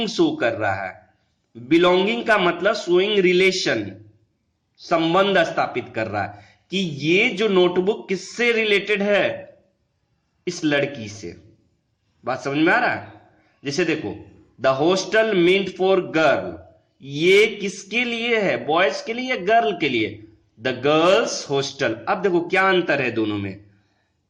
शो कर रहा है. बिलोंगिंग का मतलब शोइंग रिलेशन, संबंध स्थापित कर रहा है कि ये जो नोटबुक किससे रिलेटेड है? इस लड़की से. बात समझ में आ रहा है? जैसे देखो, the hostel meant for girl, ये किसके लिए है? बॉयज के लिए या गर्ल के लिए? The girls hostel. अब देखो क्या अंतर है दोनों में।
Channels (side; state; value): both; identical; correlation 1.00